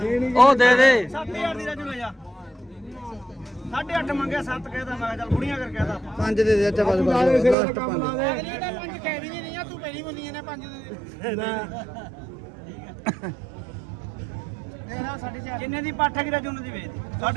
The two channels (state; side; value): drops out; left; at 7.6 s